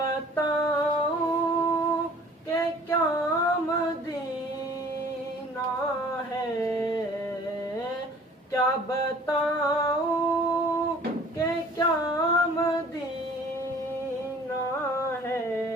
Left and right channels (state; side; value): normal; both; correlation 0.50